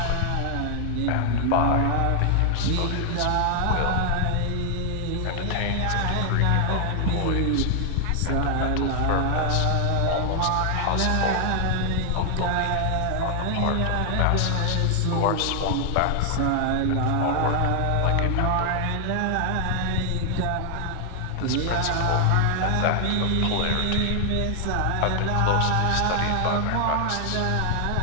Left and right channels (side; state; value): both; different; correlation 0.00